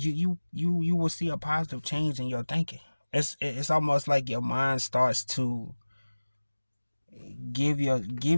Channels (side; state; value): both; inverted; correlation -1.00